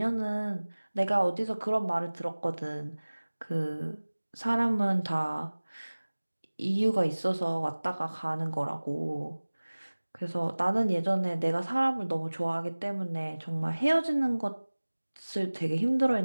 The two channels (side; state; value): both; inverted; correlation -1.00